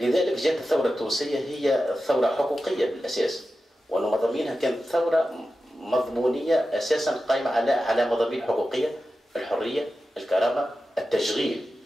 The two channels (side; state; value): both; normal; correlation 0.92